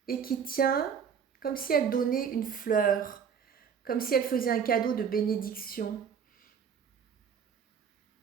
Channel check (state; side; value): quieter; left; 7.2 dB